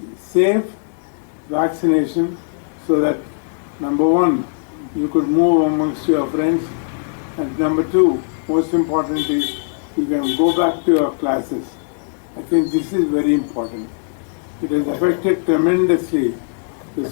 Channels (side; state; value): right; silent; digital silence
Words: safe vaccination so that, number one, you could move amongst your friends, and number two, most importantly, you can go back to your classes. I think this is very important. It has affected tremendously the